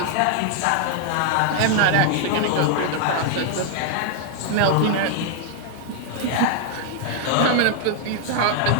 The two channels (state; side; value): different; both; correlation 0.00